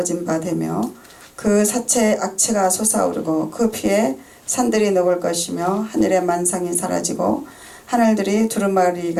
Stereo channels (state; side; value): identical; both; correlation 1.00